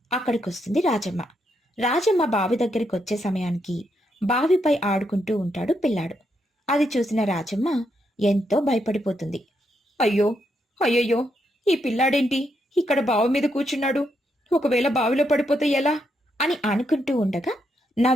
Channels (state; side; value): normal; both; correlation 0.79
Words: అక్కడికొస్తుంది రాజమ్మ. రాజమ్మ బావి దగ్గరికి వచ్చే సమయానికి బావిపై ఆడుకుంటూ ఉంటాడు పిల్లాడు. అది చూసిన రాజమ్మ ఎంతో భయపడిపోతుంది. అయ్యో, అయ్యయ్యో, ఈ పిల్లాడేంటి ఇక్కడ బావి మీద కూర్చున్నాడు? ఒకవేళ బావిలో పడిపోతే ఎలా అని అనుకుంటూ ఉండగా